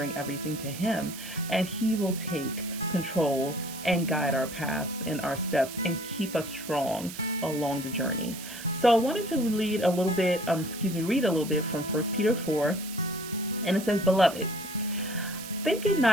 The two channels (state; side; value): noise; right; hiss, 12 dB below the sound